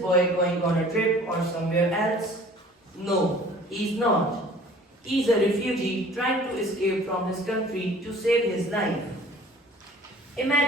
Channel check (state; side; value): normal; both; correlation 0.49